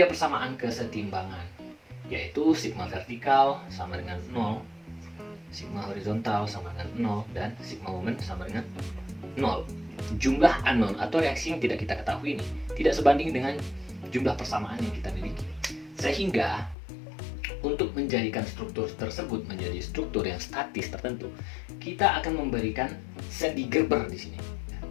persamaan kesetimbangan, yaitu sigma vertikal sama dengan 0, sigma horizontal sama dengan 0, dan sigma momen sama dengan 0. Jumlah anon atau reaksi yang tidak kita ketahui ini tidak sebanding dengan jumlah persamaan yang kita miliki. Sehingga untuk menjadikan struktur tersebut menjadi struktur yang statis tertentu, kita akan memberikan sendi Gerber di sini.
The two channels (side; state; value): right; drops out; at 16.8 s